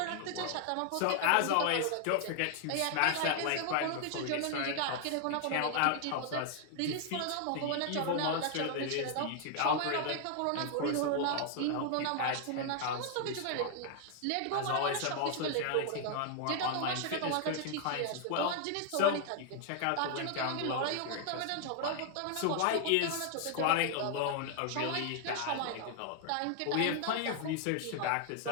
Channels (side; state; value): both; different; correlation 0.00